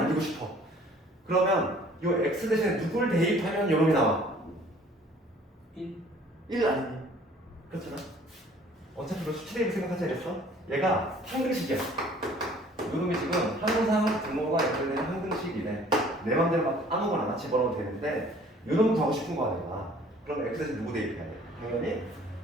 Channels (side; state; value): both; normal; correlation 0.54